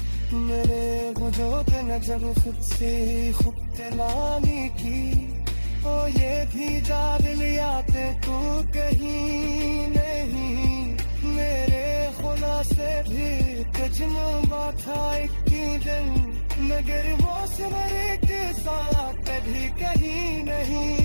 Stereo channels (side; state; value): both; inverted; correlation -1.00